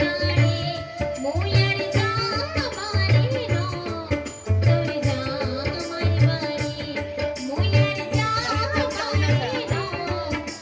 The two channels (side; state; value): both; identical; correlation 1.00